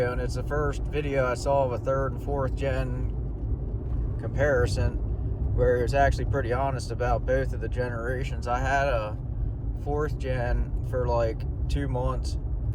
and it's the first video I saw of a third and fourth gen comparison where he was actually pretty honest about both of the generations. I had a fourth gen for like 2 months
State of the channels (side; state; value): both; identical; correlation 1.00